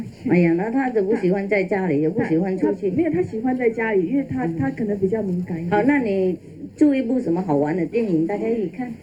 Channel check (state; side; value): identical; both; correlation 1.00